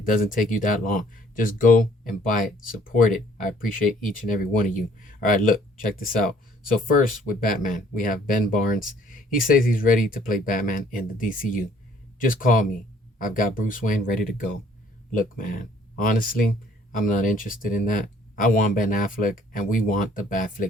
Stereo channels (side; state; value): both; normal; correlation 0.59